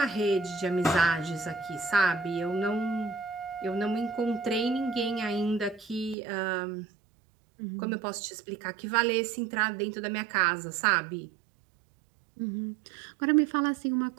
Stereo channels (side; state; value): left; drops out; at 6.2 s